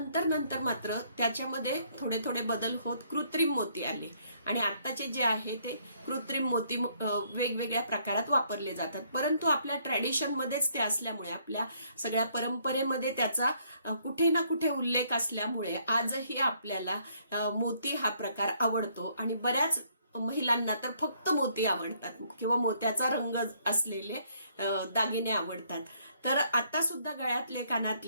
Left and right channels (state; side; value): inverted; both; correlation -0.67